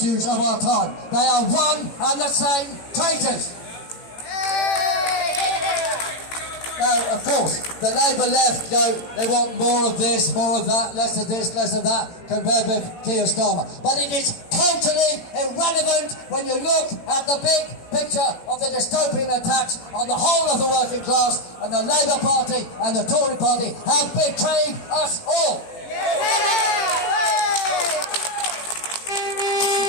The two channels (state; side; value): late; right; 18 ms